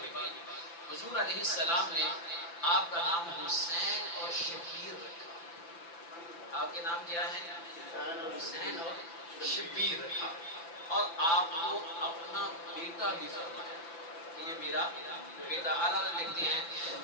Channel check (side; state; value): right; late; 5.9 ms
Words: میں ہوئی. حضور علیہ السلام نے آپ کا نام حسین اور شبیر رکھا. آپ کے نام کیا ہے؟ حسین اور شبیر رکھا. اور آپ کو اپنا بیٹا بھی فرمایا کہ یہ میرا بیٹا. اعلیٰ لکھتے ہیں